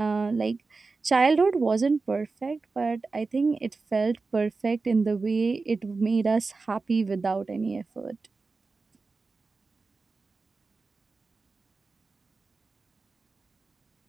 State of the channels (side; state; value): left; quieter; 4.0 dB